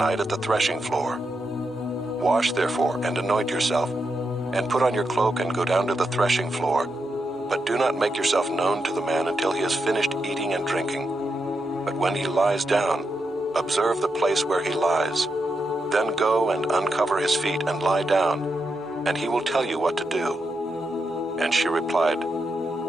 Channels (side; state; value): both; normal; correlation 0.85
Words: at the threshing floor. Wash therefore and anoint yourself, and put on your cloak and go down to the threshing floor, but do not make yourself known to the man until he has finished eating and drinking. But when he lies down, observe the place where he lies. Then go and uncover his feet and lie down, and he will tell you what to do." And she replied,